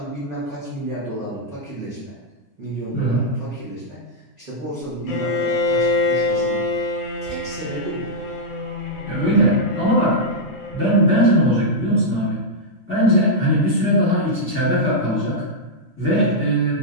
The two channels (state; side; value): normal; both; correlation -0.06